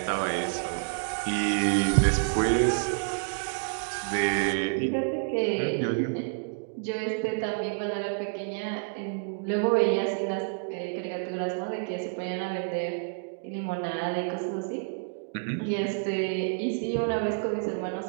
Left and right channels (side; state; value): left; silent; digital silence